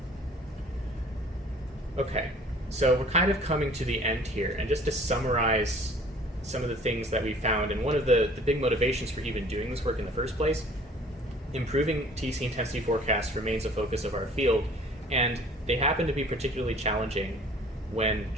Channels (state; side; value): normal; both; correlation 0.51